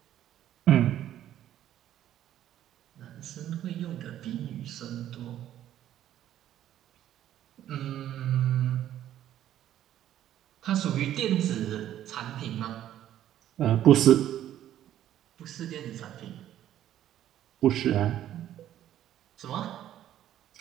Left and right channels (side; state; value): left; quieter; 11.8 dB